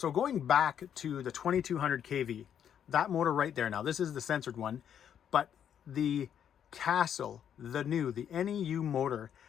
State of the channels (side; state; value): right; quieter; 9.0 dB